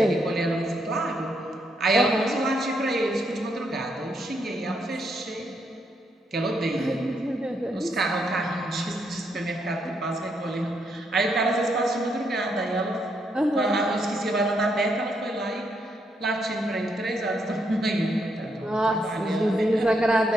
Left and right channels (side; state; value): both; normal; correlation 0.77